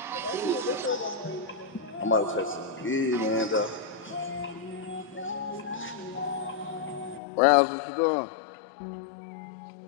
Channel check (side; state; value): right; drops out; at 7.2 s